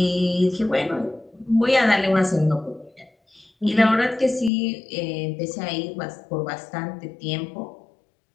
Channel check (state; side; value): drops out; right; at 4.5 s